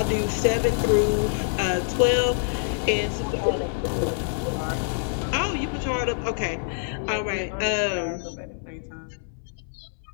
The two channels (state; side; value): silent; right; 61 dB below the other